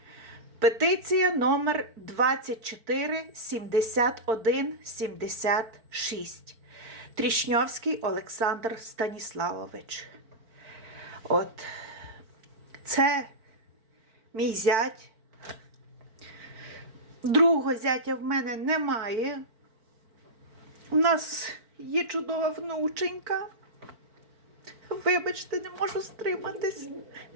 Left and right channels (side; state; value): left; late; 4.5 ms